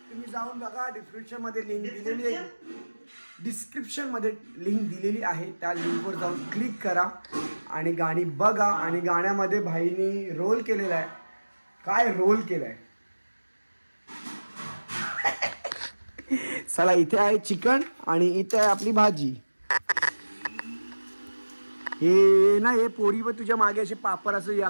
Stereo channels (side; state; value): both; inverted; correlation -1.00